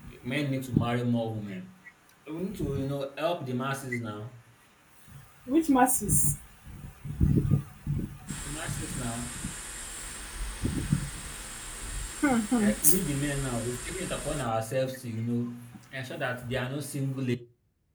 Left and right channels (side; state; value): both; identical; correlation 1.00